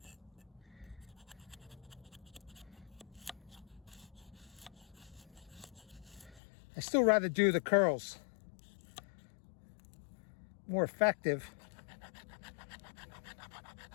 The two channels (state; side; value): drops out; right; at 6.4 s